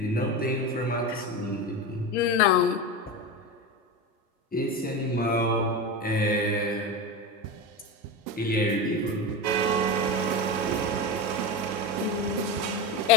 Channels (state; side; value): normal; both; correlation 0.21